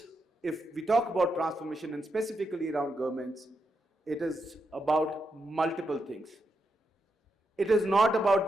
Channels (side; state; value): both; normal; correlation 0.83